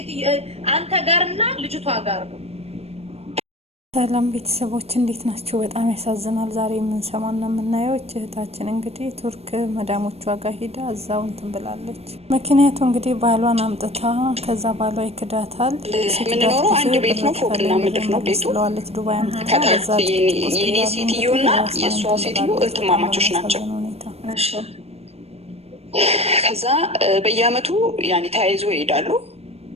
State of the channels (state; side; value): late; left; 0.30 ms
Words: አንተ ጋርና ልጅቷ ጋር ነው። ሰላም ቤተሰቦች እንዴት ናቸው? በጣም ያሳዝናል። ዛሬ የምንሰማና የምናየው እህታችን እንግዲህ ቱርክ መዳሞቿ ጋር ሄዳ እዛው እንትን ብላለች። ምክንያቱ እንግዲህ ባሏን አምጥታ ከዛ ባሏ ይክዳታል። የምንኖረው አንድ ቤት ነው፣ ፎቅና ምድር ነው ቤቱ። ስለዋለች ዱባይ አምጥታ የኔ ሴትዮና የእሷ ሴትዮ እህትማማቾች ናቸው። ከዛ በየአመቱ ያኔ ተያይዞ ይሄዳሉ።